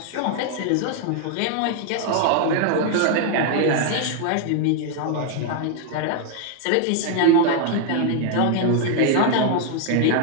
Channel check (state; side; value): different; both; correlation 0.00